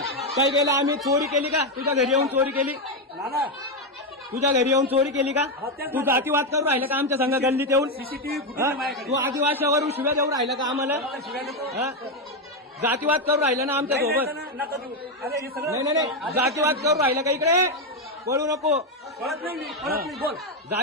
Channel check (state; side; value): normal; both; correlation 0.07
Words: काय केलं आम्ही? चोरी केली का? तुझ्या घरी येऊन चोरी केली? नाना, तुझ्या घरी येऊन चोरी केली का? तू जातीवाद करून राहिला का आमच्या संघ गल्लीत येऊन? सीसीटीव्ही फुटेज तू आदिवासीवरून शिव्या देऊन राहिला का आम्हाला? जातीवाद करून राहिला ना आमच्या सोबत? नका देऊ. अरे हे सगळं नाही नाही, जातीवाद करून राहिला का? इकडे बोलू नको. कळत नाही. मी कळत नाही. बोल.